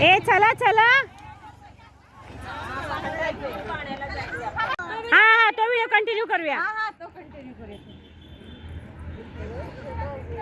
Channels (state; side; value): identical; both; correlation 1.00